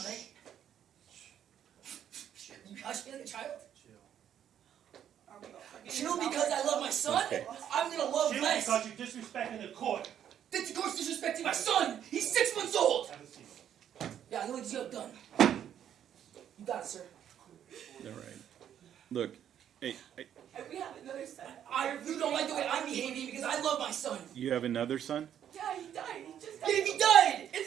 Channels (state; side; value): quieter; left; 9.8 dB